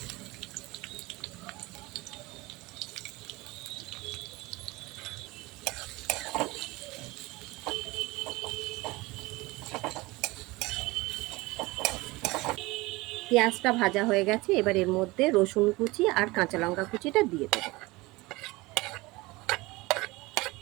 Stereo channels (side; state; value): left; quieter; 22.0 dB